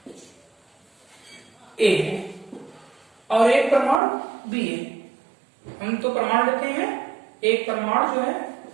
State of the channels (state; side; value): drops out; left; at 4.0 s